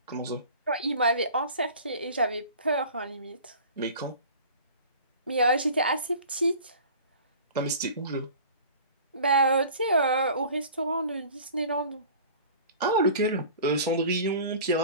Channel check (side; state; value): both; inverted; correlation -0.43